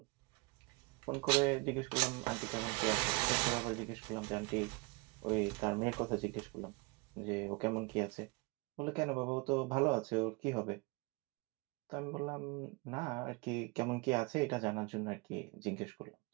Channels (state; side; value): quieter; left; 26.8 dB